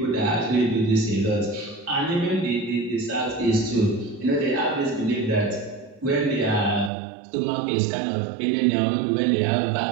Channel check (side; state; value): left; drops out; at 6.9 s